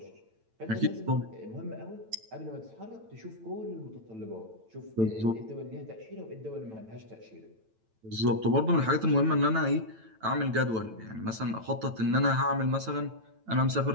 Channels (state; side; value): late; left; 9.0 ms